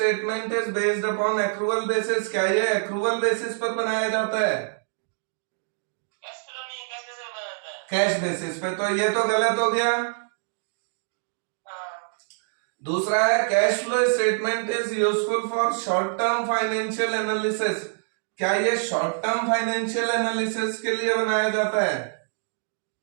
is based upon accrual basis. क्या ये एक्रूवल बेसिस पर बनाया जाता है? कैश बेसिस पे, तो ये तो गलत हो गया। दूसरा है cash flow statement is useful for short term financial analysis. क्या ये शॉर्ट टर्म फाइनेंशियल एनालिसिस के लिए बनाया जाता है?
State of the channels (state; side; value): silent; left; digital silence